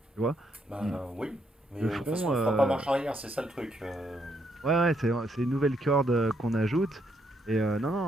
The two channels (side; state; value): both; normal; correlation 0.75